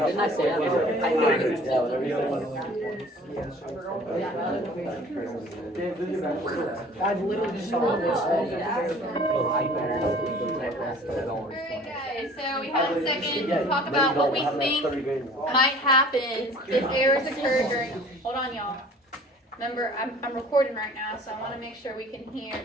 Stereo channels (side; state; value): both; normal; correlation 0.49